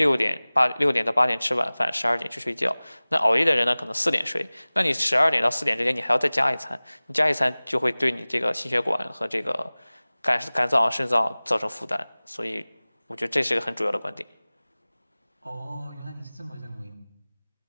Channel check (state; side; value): inverted; both; correlation -0.99